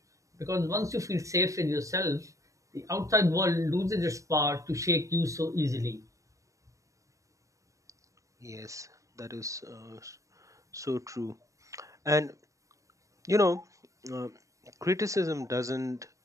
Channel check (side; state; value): left; late; 0.16 ms